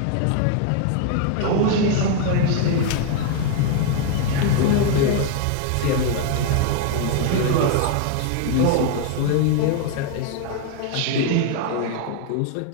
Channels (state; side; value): different; both; correlation 0.00